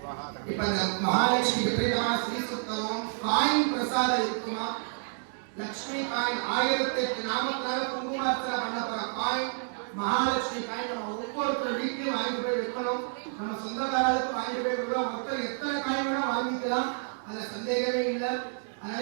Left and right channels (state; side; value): silent; left; digital silence